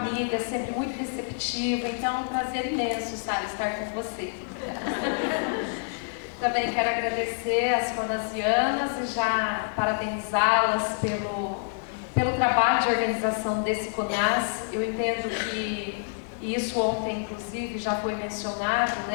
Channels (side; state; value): right; silent; 60 dB below the other